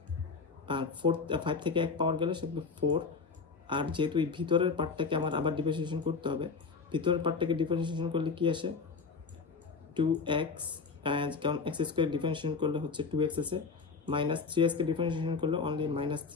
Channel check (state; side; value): quieter; right; 4.9 dB